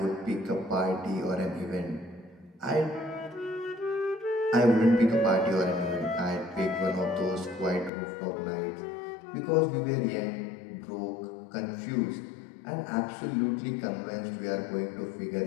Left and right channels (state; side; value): drops out; right; at 7.9 s